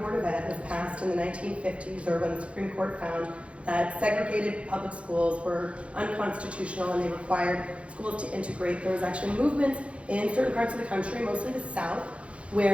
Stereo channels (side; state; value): left; late; 0.061 ms